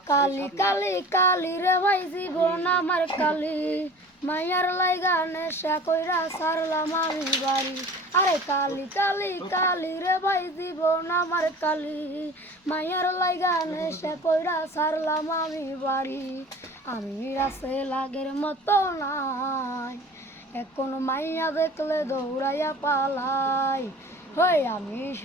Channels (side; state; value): both; normal; correlation 0.42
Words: কালি কালি কালি রে ভাই জীবন আমার কালি, মাইয়ার লাইগা নেশা কইরা সারলাম আমি বাড়ি। আরে কালি কালি কালি রে ভাই জীবন আমার কালি, মাইয়ার লাইগা নেশা কইরা সারলাম আমি বাড়ি। আমি রাসে লাগের মতো নাই, এখন মাইয়া দেখলে দৌড়াইয়া পালাই। হই আমি